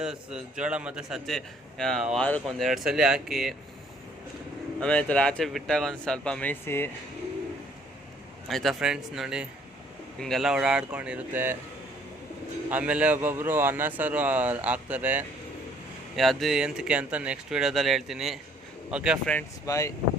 ಜೋಳ ಮತ್ತು ಸಜ್ಜೆ ವಾರಕ್ಕೆ 1-2 ಸಲ ಹಾಕಿ. ಆಮೇಲೆ ಈ ಥರ ಆಚೆ ಬಿಟ್ಟಾಗ ಒಂದು ಸ್ವಲ್ಪ ಮೇಯಿಸಿ ಆಯಿತಾ ಫ್ರೆಂಡ್ಸ್. ನೋಡಿ ಹಿಂಗೆಲ್ಲ ಓಡಾಡ್ಕೊಂಡಿರುತ್ತೆ. ಆಮೇಲೆ ಒಬ್ಬೊಬ್ಬರು ಅನ್ನ ಸಾರು ಹಾಕ್ತಾರೆ, ಅದು ಎಂತಕ್ಕೆ ಅಂತ ನೆಕ್ಸ್ಟ್ ವೀಡಿಯೋದಲ್ಲಿ ಹೇಳ್ತೀನಿ. ಓಕೆ ಫ್ರೆಂಡ್ಸ್, ಬಾಯ್.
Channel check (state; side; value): normal; both; correlation 0.61